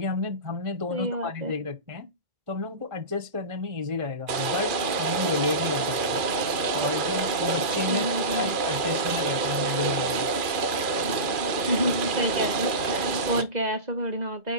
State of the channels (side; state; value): left; late; 2.4 ms